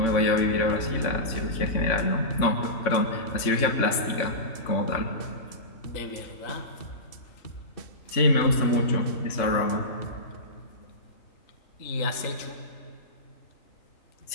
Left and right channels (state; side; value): late; right; 3.5 ms